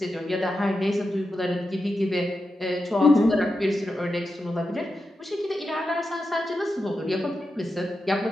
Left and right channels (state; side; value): normal; both; correlation 0.89